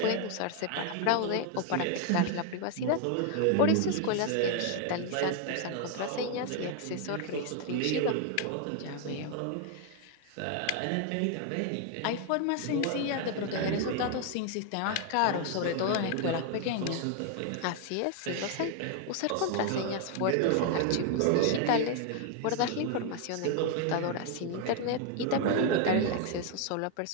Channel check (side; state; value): both; different; correlation 0.00